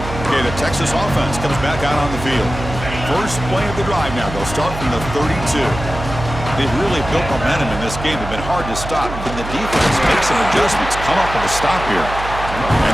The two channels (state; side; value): noise; right; hum, 9 dB below the sound